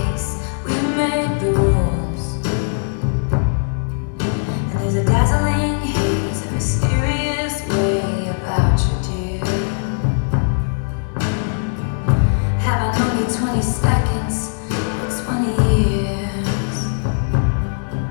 we made the rules. And there's a dazzling haze, a mysterious way about you, dear. Having only 20 seconds.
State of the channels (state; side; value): silent; right; digital silence